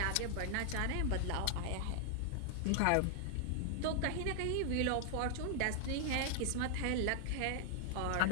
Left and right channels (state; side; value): different; both; correlation 0.00